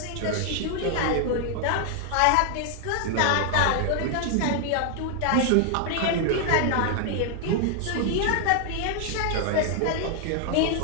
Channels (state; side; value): different; both; correlation 0.00